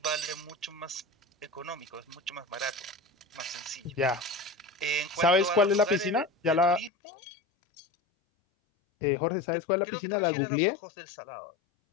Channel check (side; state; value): right; drops out; at 6.9 s